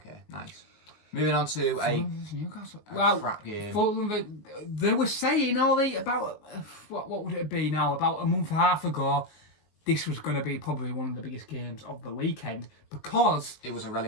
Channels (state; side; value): late; right; 19 ms